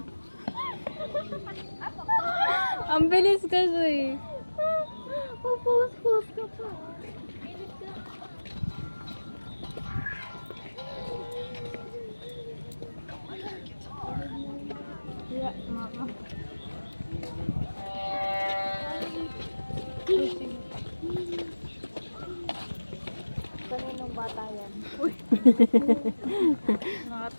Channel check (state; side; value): inverted; both; correlation -1.00